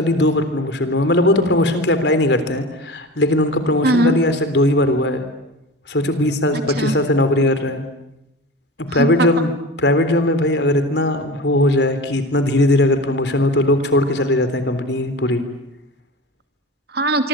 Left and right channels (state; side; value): normal; both; correlation 0.32